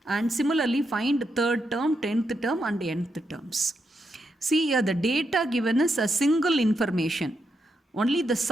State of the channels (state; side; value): normal; both; correlation 0.82